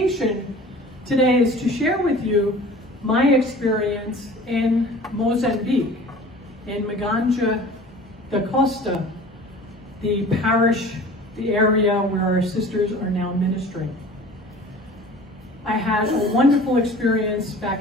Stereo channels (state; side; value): normal; both; correlation 0.43